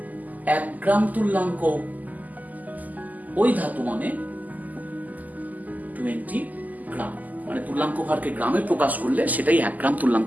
1 গ্রাম তুল্যাঙ্ক ওই ধাতু মানে 20 গ্রাম। মানে তুল্যাঙ্ক ভারকে গ্রামে প্রকাশ করলে সেটাই 1 গ্রাম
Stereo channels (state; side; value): late; left; 0.080 ms